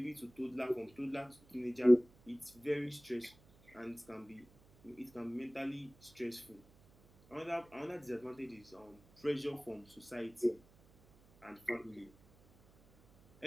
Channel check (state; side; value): noise; right; hum, 27 dB below the sound